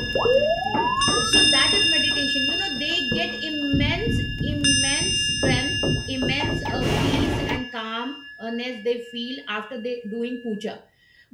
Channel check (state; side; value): identical; both; correlation 1.00